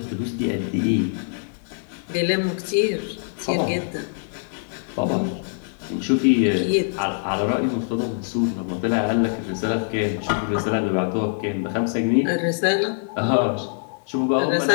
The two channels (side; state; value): right; silent; digital silence